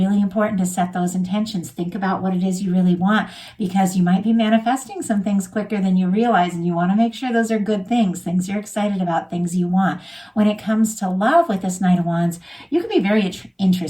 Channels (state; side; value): identical; both; correlation 1.00